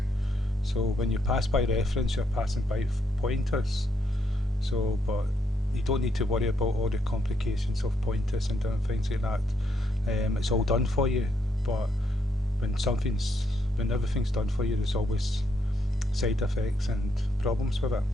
So when you pass by reference, you're passing by pointers. So, but you don't need to worry about all the complications of pointers and different things like that. It's all done for you. But when everything's done for you, there's always side effects and problems with it.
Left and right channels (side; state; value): both; normal; correlation 0.76